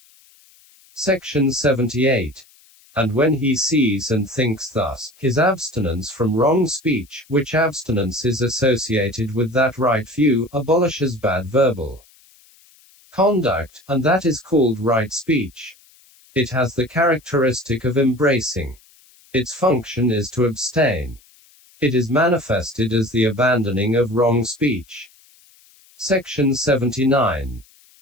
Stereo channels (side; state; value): left; noise; hiss, 29 dB below the sound